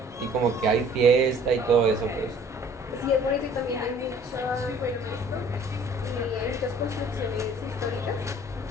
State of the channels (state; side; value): normal; both; correlation 0.53